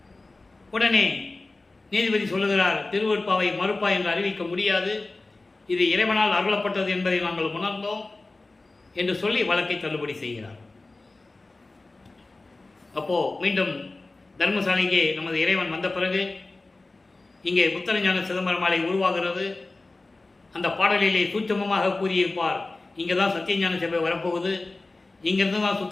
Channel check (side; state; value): right; quieter; 3.2 dB